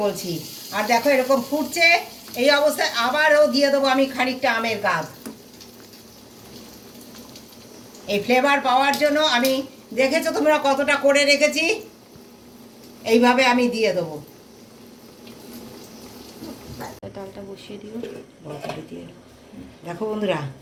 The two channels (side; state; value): both; identical; correlation 1.00